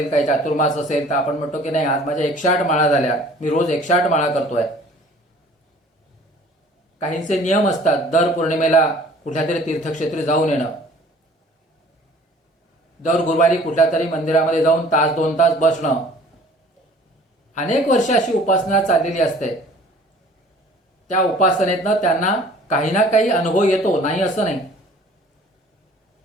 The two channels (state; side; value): normal; both; correlation 0.51